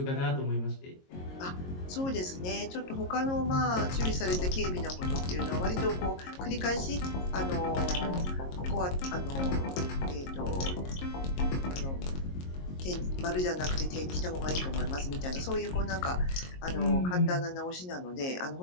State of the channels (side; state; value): right; late; 22 ms